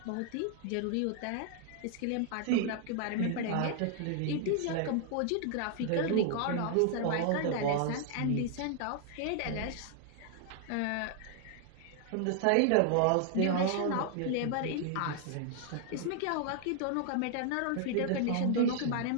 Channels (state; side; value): different; both; correlation 0.00